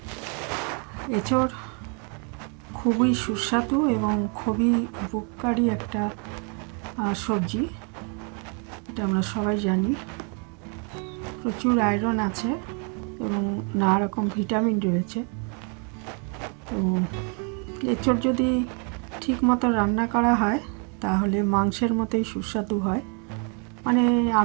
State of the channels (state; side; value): quieter; left; 37.7 dB